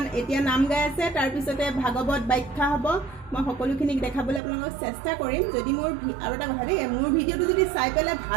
এতিয়া নাম গাই আছে, তাৰপিছতে ভাগৱত ব্যাখ্যা হ'ব। মই সকলোখিনিক দেখাবলৈ আপোনালোকক চেষ্টা কৰিম। যদি মোৰ আৰু এটা কথা দেই, মোৰ ভিডিঅ'টো যদি চাই পেলাই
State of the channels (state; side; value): drops out; left; at 4.4 s